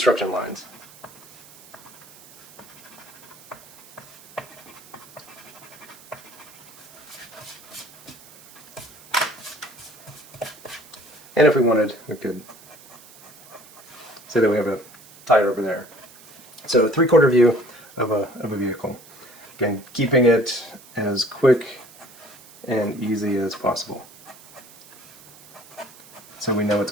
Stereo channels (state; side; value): noise; right; hiss, 22 dB below the sound